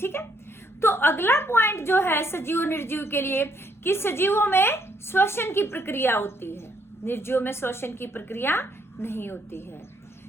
है। तो अगला पॉइंट जो है सजीव निर्जीव के लिए, कि सजीवों में श्वसन की प्रक्रिया होती है, निर्जीवों में श्वसन की प्रक्रिया नहीं होती है।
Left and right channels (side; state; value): both; normal; correlation 0.70